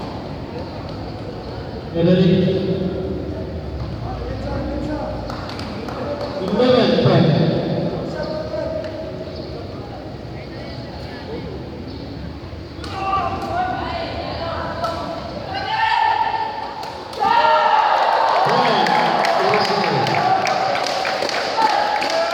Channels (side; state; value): both; identical; correlation 1.00